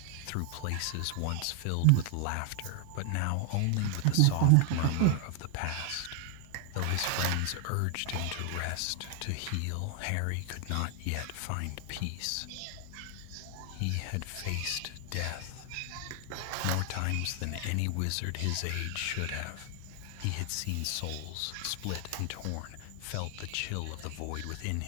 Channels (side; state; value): both; different; correlation 0.00